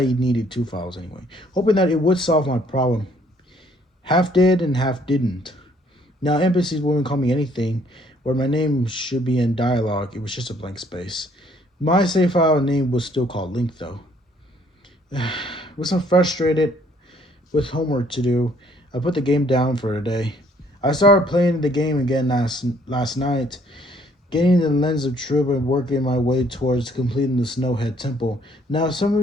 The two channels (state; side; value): normal; both; correlation 0.63